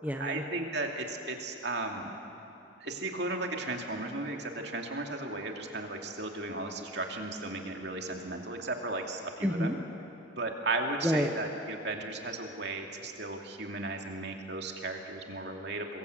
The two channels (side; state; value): both; normal; correlation 0.27